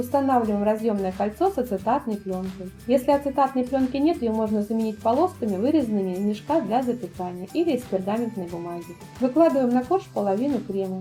разъемное кольцо с ацетатной пленкой. Если ацетатной пленки нет, ее можно заменить полосками, вырезанными из мешка для запекания или из пергаментной бумаги. Выкладываем на корж половину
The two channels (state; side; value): identical; both; correlation 1.00